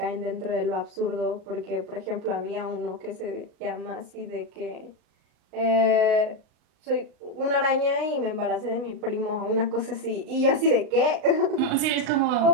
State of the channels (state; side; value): late; left; 39 ms